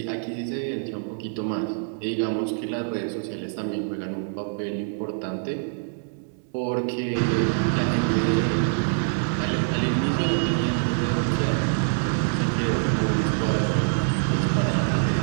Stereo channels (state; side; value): silent; left; digital silence